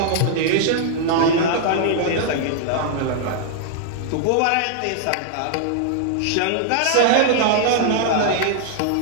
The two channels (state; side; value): different; both; correlation -0.01